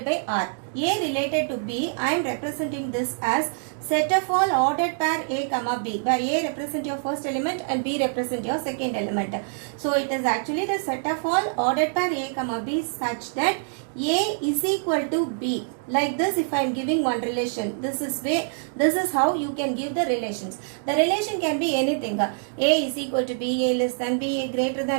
by R. A related to B, I am representing this as set of all ordered pair A, B, where A represent your first element and B represent your second element. So it is actually the set of all ordered pair A, B such that A is equal to B. Like this, if I am giving one relation, this is how you can give the relations. The relation can be anything. A is equal to B, A less than B, A greater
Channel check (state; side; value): silent; left; digital silence